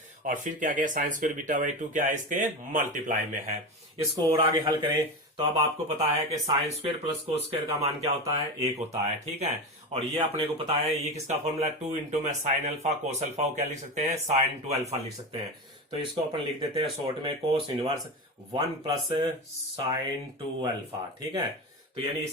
और फिर क्या गया साइन स्क्वायर बीटा वाई 2 क्या है इसके मल्टीप्लाई में है। इसको और आगे हल करें तो अब आपको पता है कि sine square plus cos square का मान क्या होता है 1 होता है। ठीक है, और ये अपने को पता है ये किसका फॉर्मूला 2 इंटू में साइन अल्फा कोस अल्फा को क्या लिख सकते हैं साइन 2 अल्फा लिख सकते हैं। तो इसको अपन लिख देते हैं शॉर्ट में कोस इनवर्स 1 प्लस साइन 2 अल्फा। ठीक है, तो यानी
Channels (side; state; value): both; normal; correlation 0.22